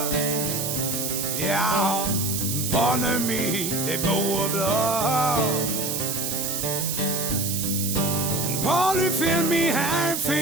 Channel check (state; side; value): noise; right; hiss, 2 dB below the sound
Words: Ja, pollen min det blå blå. Pollen film i